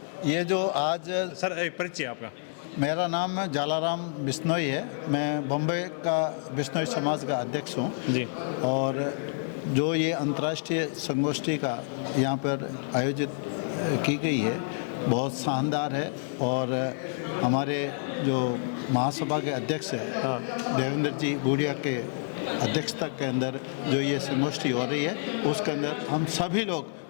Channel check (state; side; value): silent; right; digital silence